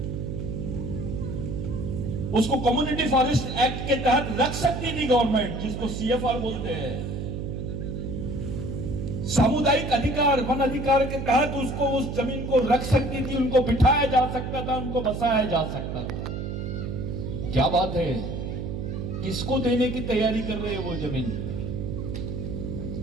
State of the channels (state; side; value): noise; right; hum, 5 dB below the sound